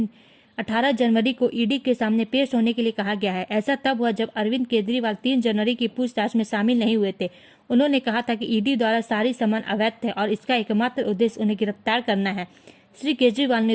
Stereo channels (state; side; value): identical; both; correlation 1.00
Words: 18 जनवरी को ईडी के सामने पेश होने के लिए कहा गया है। ऐसा तब हुआ जब अरविंद केजरीवाल 3 जनवरी की पूछताछ में शामिल नहीं हुए थे। उन्होंने कहा था कि ईडी द्वारा सारी समन अवैध थे और इसका एकमात्र उद्देश्य उन्हें गिरफ्तार करना है। श्री केजरीवाल